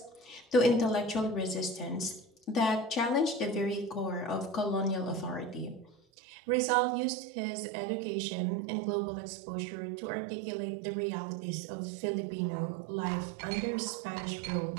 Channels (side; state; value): left; drops out; at 6.0 s